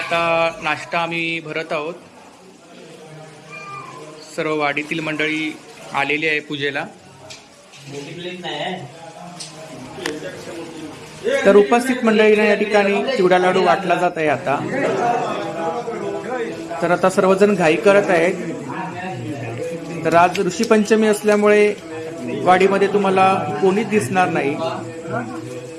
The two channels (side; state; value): both; identical; correlation 1.00